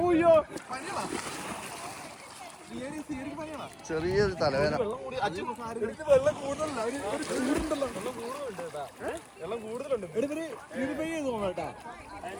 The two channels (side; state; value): both; identical; correlation 1.00